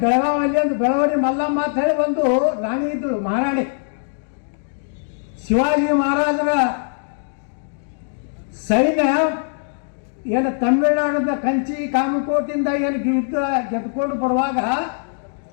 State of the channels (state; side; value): silent; right; digital silence